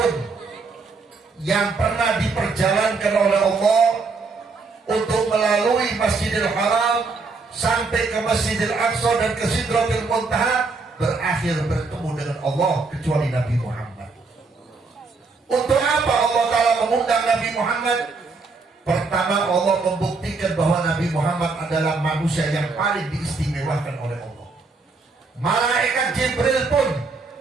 yang pernah diperjalankan oleh Allah untuk melalui Masjidil Haram sampai ke Masjidil Aqsa dan ke Sidratil Muntaha berakhir bertemu dengan Allah kecuali Nabi Muhammad. Untuk apa Allah Ta'ala mengundang Nabi Muhammad? Pertama, Allah membuktikan bahwa Nabi Muhammad adalah manusia yang paling diistimewakan oleh Allah. Malaikat Jibril pun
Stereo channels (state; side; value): quieter; left; 4.1 dB